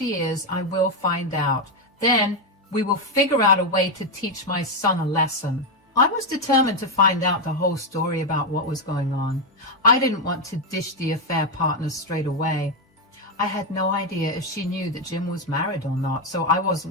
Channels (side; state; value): both; normal; correlation 0.05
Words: is, I will find out. Then we will figure out a way to teach my son a lesson. I was determined to find out the whole story about what was going on. I didn't want to dish the affair partner straight away. I had no idea if she knew that Jim was married or not, so I